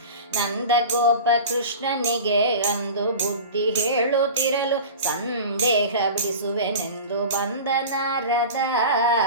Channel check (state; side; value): inverted; both; correlation -0.34